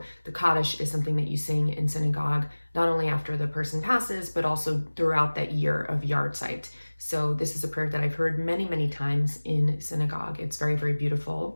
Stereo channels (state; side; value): inverted; both; correlation -1.00